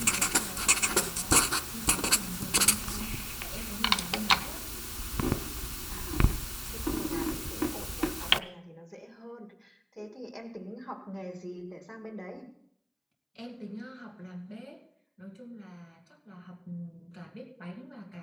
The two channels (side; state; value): both; identical; correlation 1.00